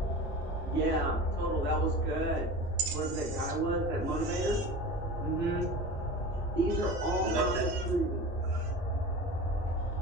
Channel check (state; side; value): normal; both; correlation 0.34